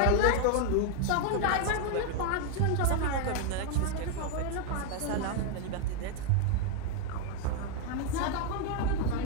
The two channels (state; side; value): different; both; correlation 0.01